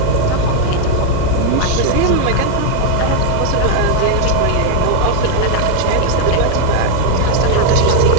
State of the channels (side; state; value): both; different; correlation 0.00